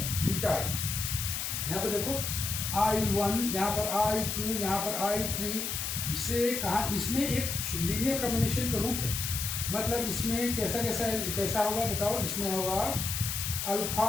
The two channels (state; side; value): noise; left; hiss, 2 dB below the sound